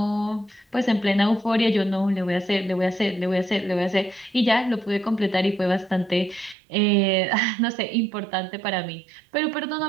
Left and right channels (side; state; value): left; drops out; at 6.6 s